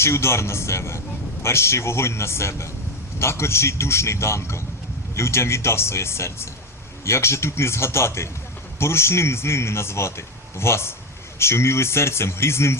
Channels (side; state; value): both; normal; correlation 0.14